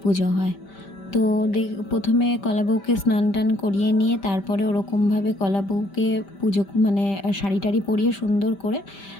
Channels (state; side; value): late; right; 5.1 ms